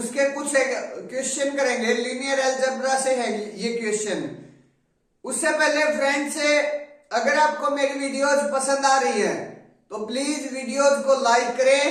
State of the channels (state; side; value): identical; both; correlation 1.00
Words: कुछ क्वेश्चन करेंगे। लीनियर अलजेब्रा से है ये क्वेश्चन। उससे पहले फ्रेंड्स, अगर आपको मेरी वीडियोज पसंद आ रही है तो प्लीज वीडियोज को लाइक करें,